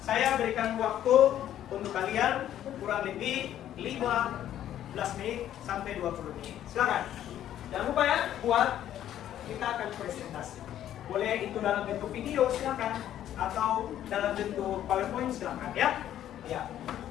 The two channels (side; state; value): right; quieter; 11.5 dB